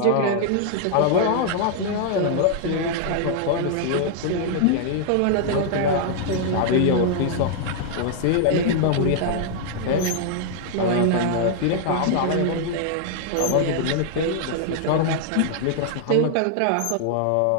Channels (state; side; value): different; both; correlation -0.01